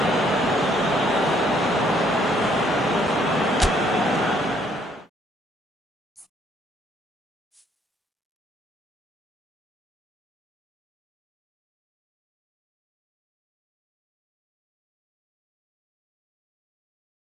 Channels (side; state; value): both; normal; correlation 0.66